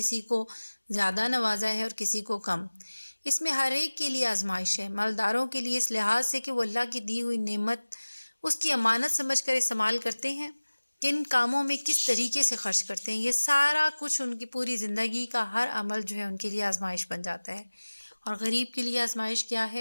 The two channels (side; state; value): both; inverted; correlation -1.00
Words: کو زیادہ نوازا ہے اور کسی کو کم۔ اس میں ہر ایک کے لیے آزمائش ہے، مالداروں کے لیے اس لحاظ سے کہ وہ اللہ کی دی ہوئی نعمت اس کی امانت سمجھ کر استعمال کرتے ہیں، کن کاموں میں کس طریقے سے خرچ کرتے ہیں، یہ سارا کچھ ان کی پوری زندگی کا ہر عمل جو ہے ان کے لیے آزمائش بن جاتا ہے۔ اور غریب کے لیے آزمائش کیا